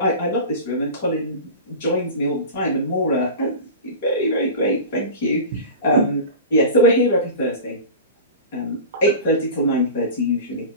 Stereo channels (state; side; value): inverted; both; correlation -0.32